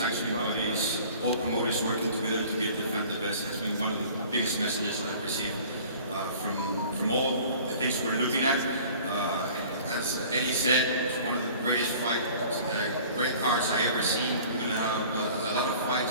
bodies, all promoters working together to give the fan the best. Has been one of the biggest messages I've received from all the things we're looking at. As Eddie said, it's one of the greatest fights, great cards I ever seen. We're going to have a lot of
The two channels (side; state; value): both; inverted; correlation -0.47